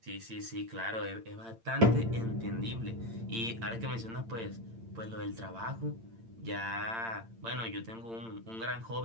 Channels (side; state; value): left; late; 8.8 ms